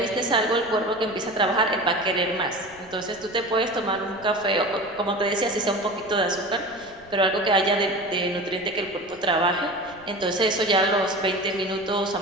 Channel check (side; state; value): left; noise; rumble, 24 dB below the sound